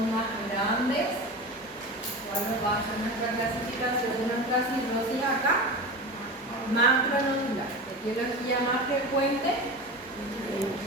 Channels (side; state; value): both; normal; correlation 0.28